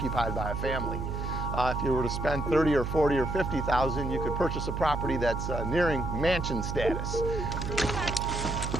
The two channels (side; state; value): right; noise; hum, 3 dB below the sound